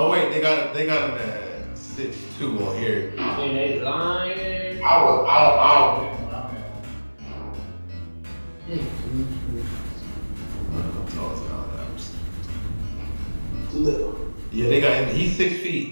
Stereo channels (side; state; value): both; inverted; correlation -1.00